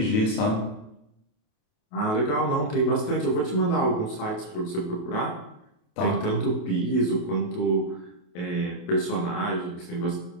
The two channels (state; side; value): late; right; 28 ms